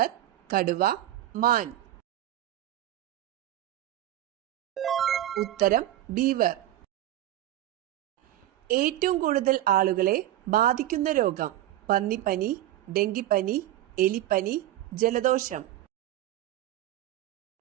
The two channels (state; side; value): quieter; left; 13.9 dB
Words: കടുവ, മാൻ. ഉത്തരം ബീവർ. ഏറ്റവും കൂടുതൽ ആളുകളെ ബാധിക്കുന്ന രോഗം? പന്നിപ്പനി, ഡെങ്കിപ്പനി, എലിപ്പനി, ജലദോഷം.